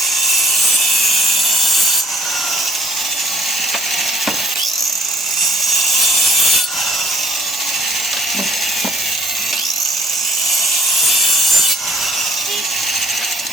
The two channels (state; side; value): normal; both; correlation 0.59